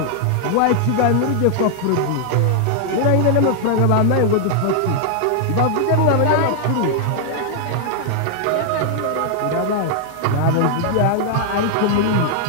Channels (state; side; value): different; both; correlation 0.00